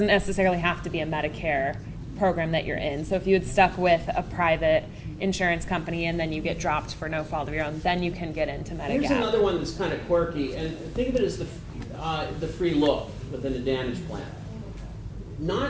necessarily have to be a Medicare program that you're in. So if you had stuck with a private insurance company and then you get dropped for no fault of your own, then you can get into Medigap. Here's another one that's kind of quirky, and think of it as the free look with an Advantage plan. Not,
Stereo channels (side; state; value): both; identical; correlation 1.00